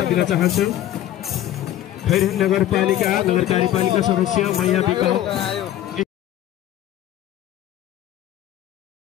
दिन चाहन्छु। खैरहन नगरपालिका सदस्य मैया बिक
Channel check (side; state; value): right; quieter; 12.5 dB